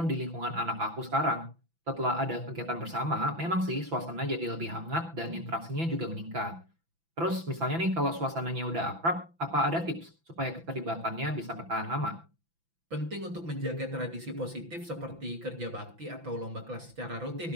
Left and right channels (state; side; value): late; left; 6.0 ms